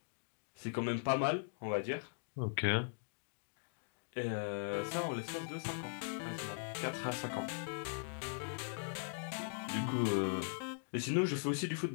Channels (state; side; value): silent; right; digital silence